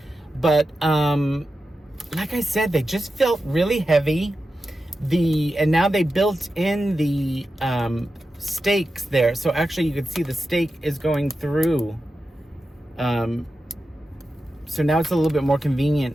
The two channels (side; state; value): both; normal; correlation 0.91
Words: But like I said, they just felt really heavy. And now they built in the stakes there, so actually you can see the stake is going through. So now it's a little bit more